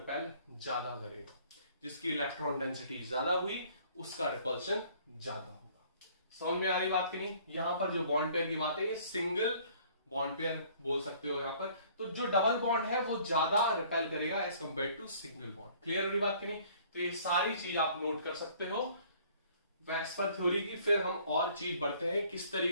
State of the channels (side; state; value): both; inverted; correlation -0.56